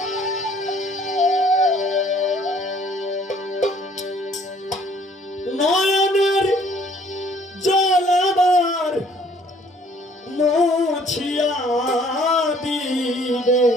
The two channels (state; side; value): normal; both; correlation 0.59